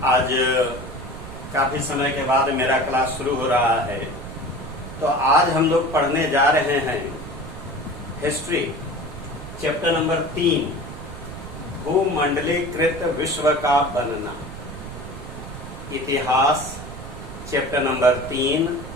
आज काफी समय के बाद मेरा क्लास शुरू हो रहा है। तो आज हम लोग पढ़ने जा रहे हैं हिस्ट्री चैप्टर नंबर 3, भूमंडलीकृत विश्व का बनना। इतिहास चैप्टर नंबर 3,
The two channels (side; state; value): right; noise; rumble, 11 dB below the sound